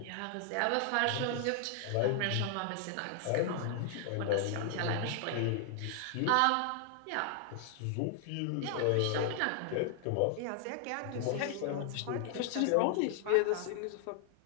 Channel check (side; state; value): both; different; correlation 0.00